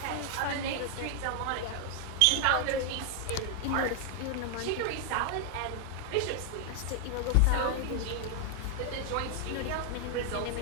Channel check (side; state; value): both; different; correlation 0.00